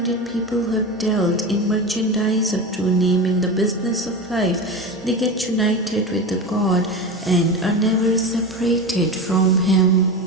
people who have dealt in merchandise of true name in the business of life, they get united with the God and are never separated from Him.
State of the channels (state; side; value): normal; both; correlation 0.24